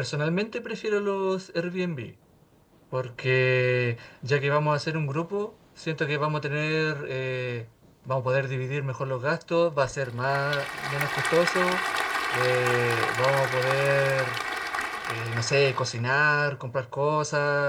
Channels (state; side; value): identical; both; correlation 1.00